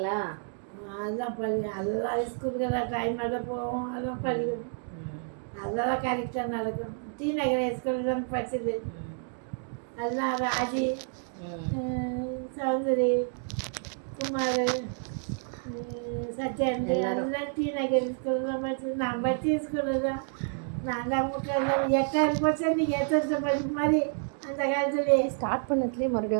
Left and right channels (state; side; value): silent; left; 58 dB below the other